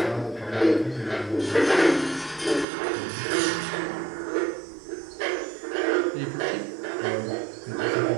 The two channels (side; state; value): left; drops out; at 2.7 s